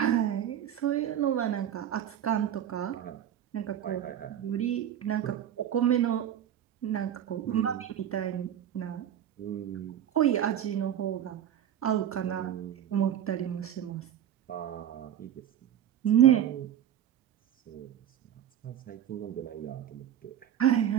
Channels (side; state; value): left; quieter; 10.3 dB